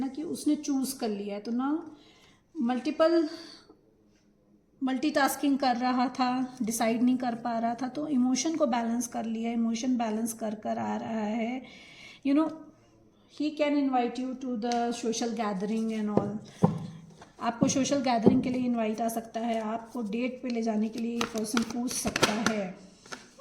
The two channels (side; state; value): both; identical; correlation 1.00